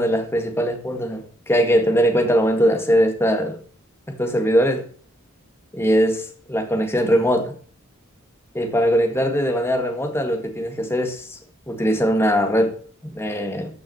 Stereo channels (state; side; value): normal; both; correlation 0.76